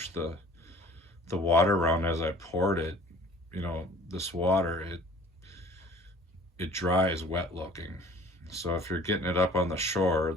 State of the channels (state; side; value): normal; both; correlation 0.49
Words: the water around as I poured it. This water, it dries wet looking. So if you're getting it up on the shore is